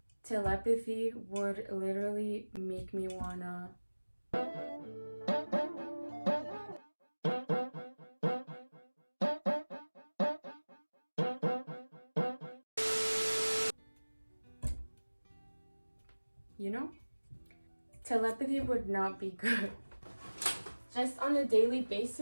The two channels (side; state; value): both; inverted; correlation -1.00